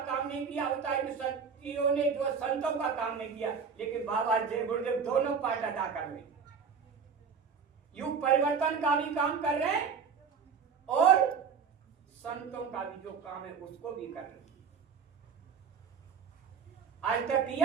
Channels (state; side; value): quieter; left; 6.2 dB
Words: काम नहीं किया, अवतारिक शक्तियों ने जो संतों का काम नहीं किया। लेकिन बाबा जय गुरुदेव दोनों पार्ट अदा कर रहे, युग परिवर्तन का भी काम कर रहे हैं और संतों का भी जो काम है उसको भी कर रहे हैं। आज तक